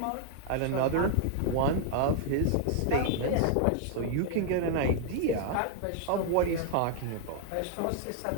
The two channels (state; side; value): different; both; correlation 0.00